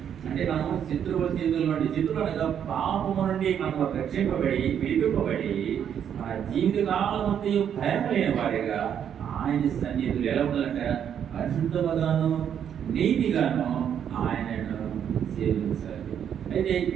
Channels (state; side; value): quieter; left; 8.8 dB